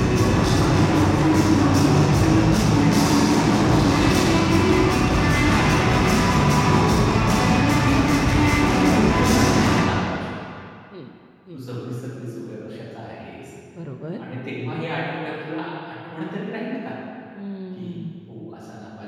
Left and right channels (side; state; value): both; identical; correlation 1.00